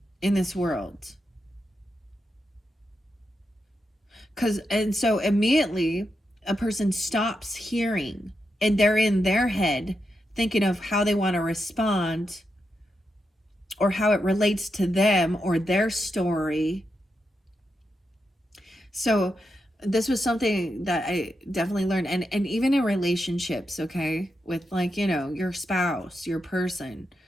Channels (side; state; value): both; normal; correlation 0.86